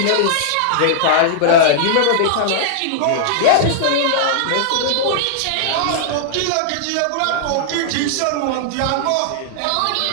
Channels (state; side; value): different; both; correlation -0.01